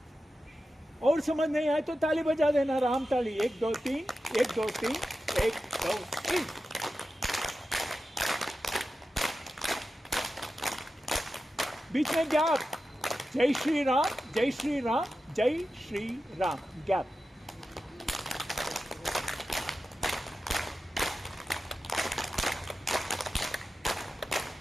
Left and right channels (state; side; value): normal; both; correlation 0.92